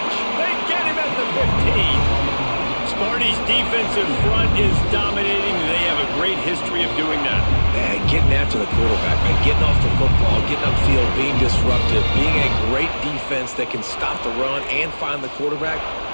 They get him at the 15. Sparty's defensive front is dominating. They have a great history of doing that. Man, getting after the quarterback, man, getting off the football, getting upfield, being disruptive, being a great defense that can stop the run and find the quarterback.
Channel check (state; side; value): inverted; both; correlation -1.00